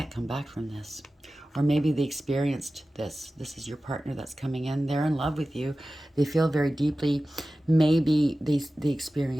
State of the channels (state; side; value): normal; both; correlation 0.95